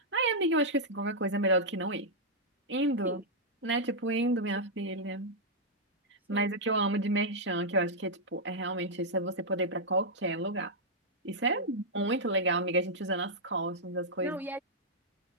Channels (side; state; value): both; normal; correlation -0.06